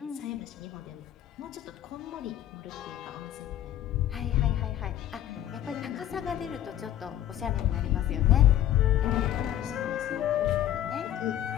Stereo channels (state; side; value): quieter; right; 11.9 dB